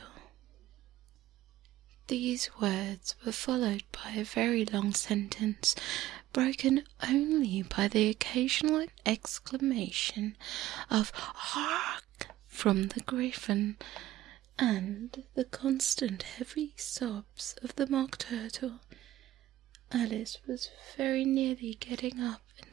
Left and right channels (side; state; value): left; quieter; 14.7 dB